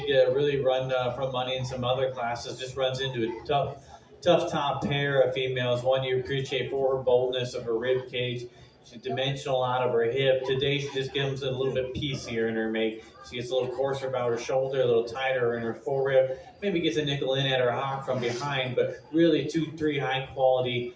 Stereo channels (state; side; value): identical; both; correlation 1.00